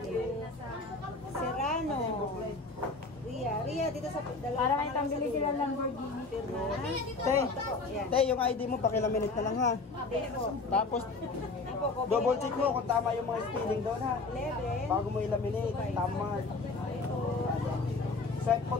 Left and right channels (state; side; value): quieter; right; 3.7 dB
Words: you. Serrano. Ria, dito sa dalawa. Para may pambili sila ng Lamborghini. Pirma. Te, Yan. te, yung ID mo, pakilaminate na lang ha. Tapos, double check mo kung tama yung mga spelling doon ha. 11. Bago mo ilaminate, tama. Swipe mo